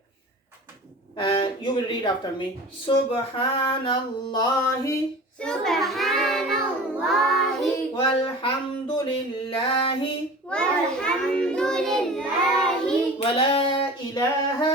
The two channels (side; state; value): both; normal; correlation 0.38